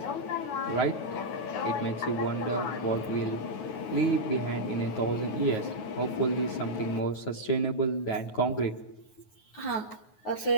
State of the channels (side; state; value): right; late; 9.4 ms